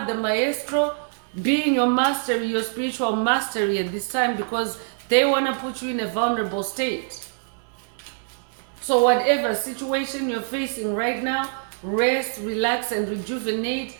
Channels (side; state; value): left; silent; digital silence